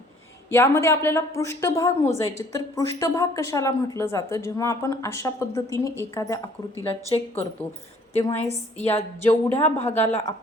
यामध्ये आपल्याला पृष्ठभाग मोजायचे. तर पृष्ठभाग कशाला म्हटलं जातं? जेव्हा आपण अशा पद्धतीने एखाद्या आकृतीला चेक करतो तेव्हा या जेवढ्या भागाला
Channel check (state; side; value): normal; both; correlation 0.57